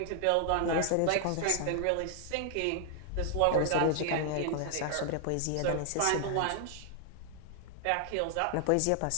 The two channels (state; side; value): different; both; correlation 0.00